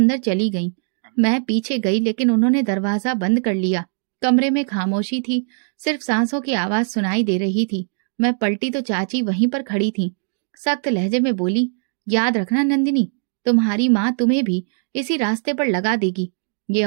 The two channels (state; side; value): silent; left; 57 dB below the other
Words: चली गई। मैं पीछे गई, लेकिन उन्होंने दरवाजा बंद कर लिया। कमरे में खामोशी थी, सिर्फ सांसों की आवाज सुनाई दे रही थी। मैं पलटी तो चाची वहीं पर खड़ी थी। सख्त लहजे में बोली, याद रखना नंदिनी, तुम्हारी माँ तुम्हें भी इसी रास्ते पर लगा देगी। ये